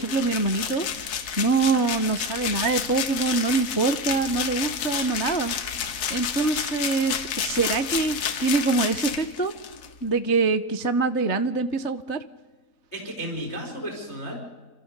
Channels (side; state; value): right; late; 4.0 ms